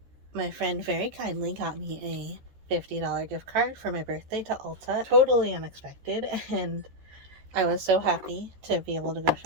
My friend very kindly got me a $50 gift card for my birthday to Ulta. Totally unexpected, and I was so happy to be able to go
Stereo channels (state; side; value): late; left; 14 ms